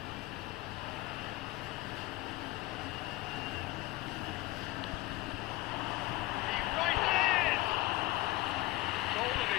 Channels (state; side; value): quieter; right; 19.0 dB